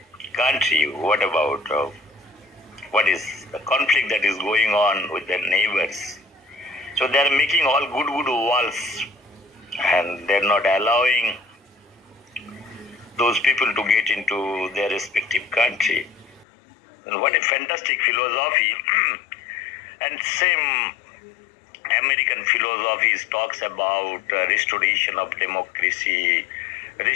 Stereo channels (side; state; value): right; drops out; at 16.4 s